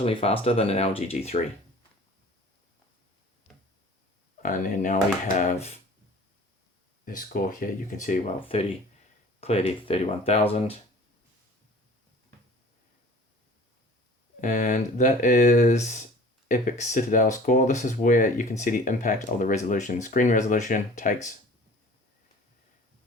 faster than an LG G3. And then now we have this score here. You can see, well, 30 clearly 31,000. And that is Epic Citadel score. This is where you can see the impact of the resolution. Screen resolution takes.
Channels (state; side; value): normal; both; correlation 0.46